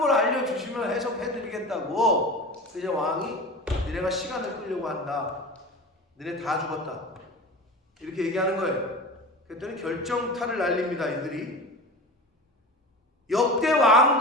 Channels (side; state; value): both; normal; correlation 0.32